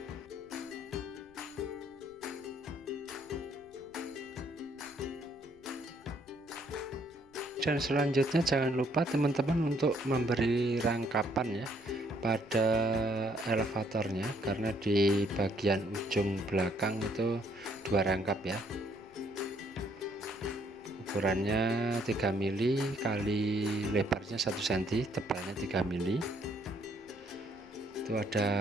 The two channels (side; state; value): left; noise; rumble, 29 dB below the sound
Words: Dan selanjutnya jangan lupa teman-teman untuk memberi rangkapan ya pada elevatornya, karena di bagian ujung belakang itu 2 rangkap ya. Ukurannya 3 mili kali lebarnya 1 cm, tebalnya 3 mili. Itu